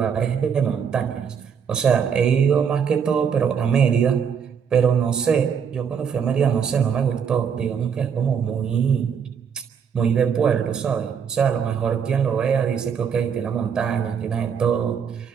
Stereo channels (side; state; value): left; quieter; 7.1 dB